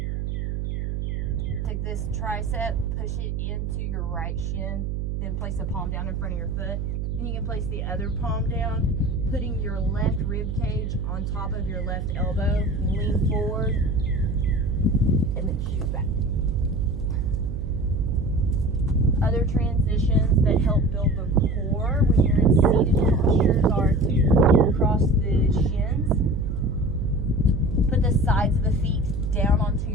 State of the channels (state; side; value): noise; right; hum, 2 dB below the sound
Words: take this tricep, push it into your right shin, then place the palm down in front of your foot. Then you can place the other palm down, putting your left rib cage on top of your left elbow. Lean forward and then shoot back. Other transitions that help build the core when you're in seated postures are to cross the shins, put the sides of the feet down onto